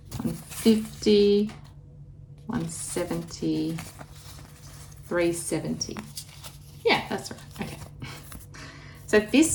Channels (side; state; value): both; identical; correlation 1.00